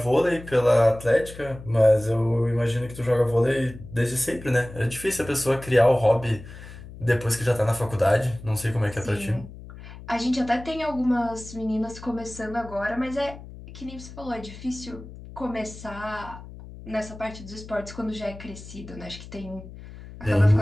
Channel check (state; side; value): noise; left; hum, 15 dB below the sound